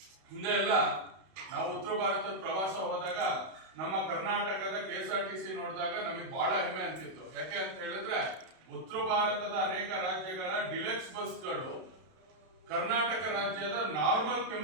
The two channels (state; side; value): late; left; 32 ms